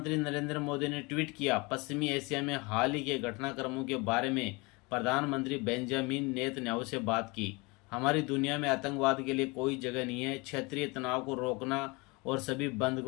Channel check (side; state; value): right; quieter; 26.4 dB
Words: नरेंद्र मोदी ने ट्वीट किया, पश्चिमी एशिया में हाल ही के घटनाक्रमों के बारे में प्रधानमंत्री बेंजामिन नेतन्याहू से बात की। हमारी दुनिया में आतंकवाद के लिए कोई जगह नहीं है। क्षेत्रीय तनाव को रोकना और सभी